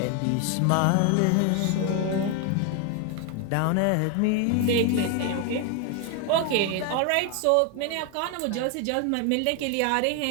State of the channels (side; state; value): both; different; correlation 0.01